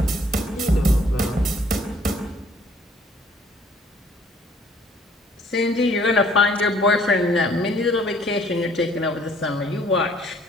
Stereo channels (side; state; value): both; normal; correlation 0.60